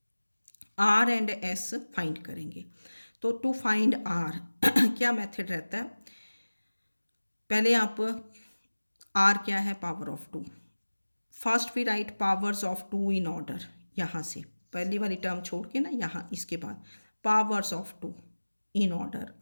r and s find करेंगे। तो टू फाइंड r क्या मेथड रहता है, पहले आप r क्या है, power of 2, first we write powers of 2 in order, यहाँ से पहली वाली टर्म छोड़ के ना, यहाँ इसके बाद powers of 2 in order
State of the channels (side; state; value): both; inverted; correlation -1.00